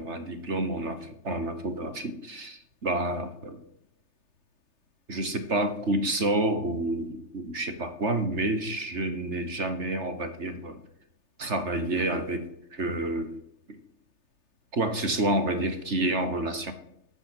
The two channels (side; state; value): left; late; 3.3 ms